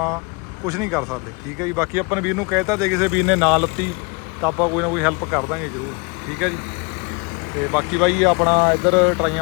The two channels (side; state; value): right; quieter; 31.2 dB